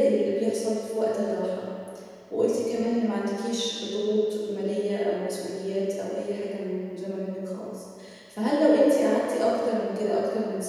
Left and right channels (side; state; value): both; identical; correlation 1.00